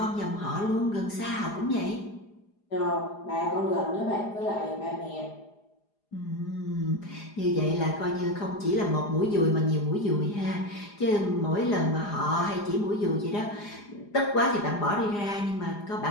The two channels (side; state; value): right; late; 4.9 ms